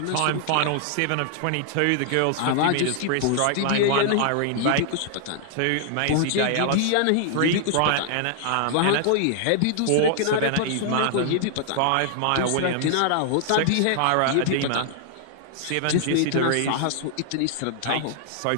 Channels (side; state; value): both; different; correlation -0.01